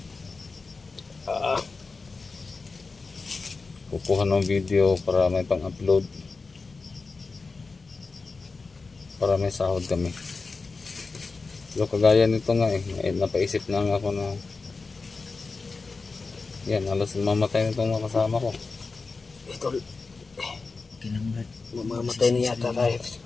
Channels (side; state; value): right; quieter; 4.1 dB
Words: kukuha ng video para may pang-upload, para may sahod kami. So kagaya nito nga napaisip na nga ako na yan, halos mamatay na itong mga kasama ko. Ito, Kailangan, Brad. mamamatay na yata tayo.